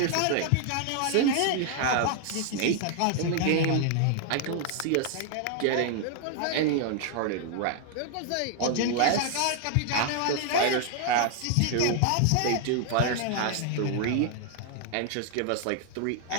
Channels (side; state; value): both; different; correlation 0.00